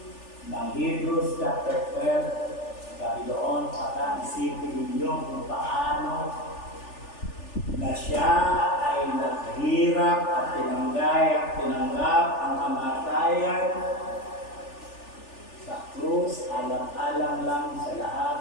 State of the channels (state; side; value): late; right; 3.4 ms